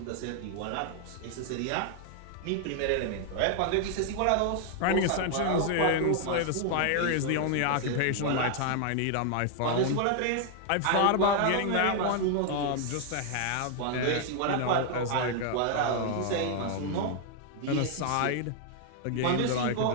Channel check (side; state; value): both; different; correlation 0.00